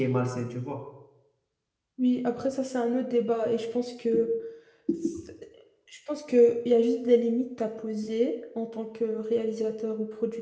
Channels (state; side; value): identical; both; correlation 1.00